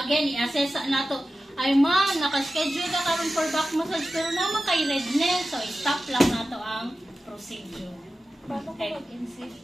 i-assess nato, ay ma'am, naka-schedule ka karon for back massage pero naman kay redness, so i-stop lang nato ang procedure. Paano Okay. kung mag-insist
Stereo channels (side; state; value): both; normal; correlation 0.93